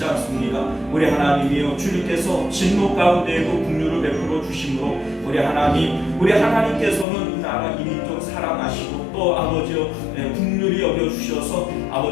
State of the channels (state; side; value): drops out; right; at 7.1 s